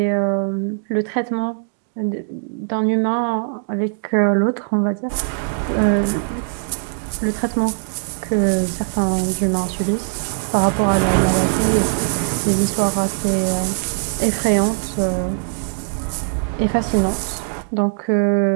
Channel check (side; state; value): left; silent; digital silence